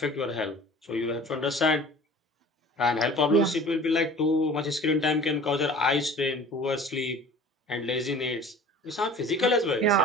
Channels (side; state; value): both; normal; correlation 0.44